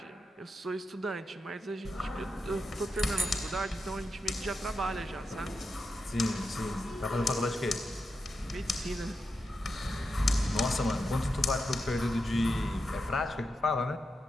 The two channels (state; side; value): normal; both; correlation 0.88